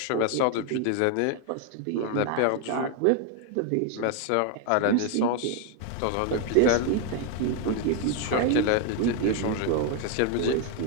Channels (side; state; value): both; different; correlation 0.01